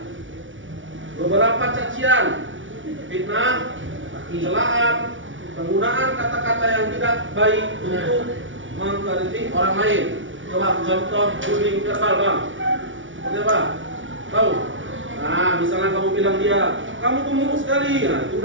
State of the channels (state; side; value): late; left; 0.56 ms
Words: beberapa cacian, fitnah, celaan, penggunaan kata-kata yang tidak baik untuk mengkritik orang lain. Coba contoh bullying verbal, Bang. Seperti apa? Tahu? Nah, misalnya kamu bilang dia, kamu gemuk sekali, nah itu